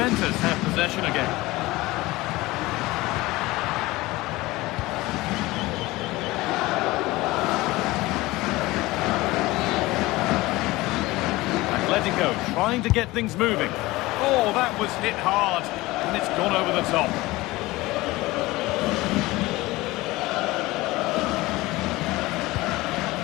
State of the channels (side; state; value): right; quieter; 19.9 dB